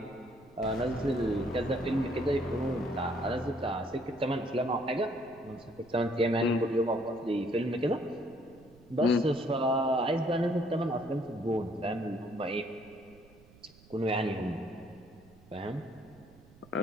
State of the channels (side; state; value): right; noise; rumble, 25 dB below the sound